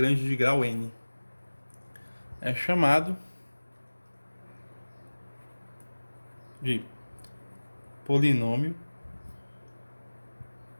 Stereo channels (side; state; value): both; inverted; correlation -1.00